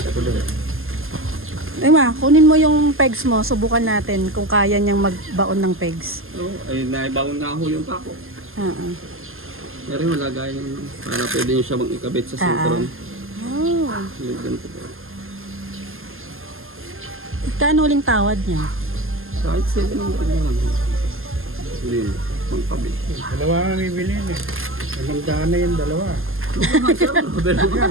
ako dun. Ay ma, kunin mo yung pegs mo. Subukan natin kung kaya niyang magbaon ng pegs. Oo, ay naibawon nga ho yung pako. Oo. Pero yung lagayan para pwede nyo siya bang ikabit sa sintron. Oh. Yung ganito po. Kano uling tawad niya? Kahit 700 na lang. Hindi mo, magkabit. Dalawa nga bibilin eh. 500 na yung dalawa. Pero yan.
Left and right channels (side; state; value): left; late; 0.60 ms